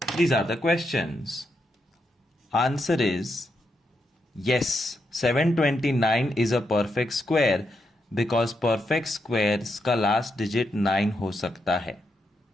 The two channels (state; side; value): normal; both; correlation 0.82